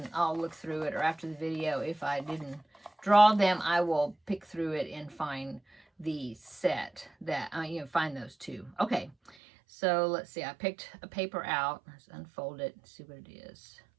through it, or after the video, if I didn't draw them, I will pick through it and find the set that, find those two. Okay, so let's see. I picked a paper out. Let's unfold it and see what it is.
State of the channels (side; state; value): left; drops out; at 9.3 s